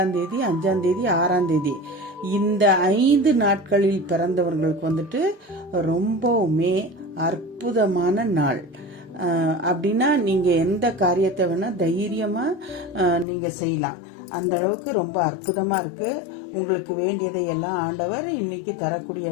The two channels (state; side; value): drops out; right; at 13.2 s